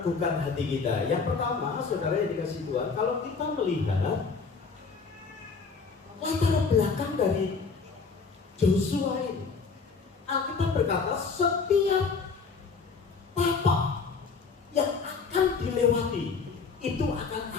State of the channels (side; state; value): right; quieter; 5.0 dB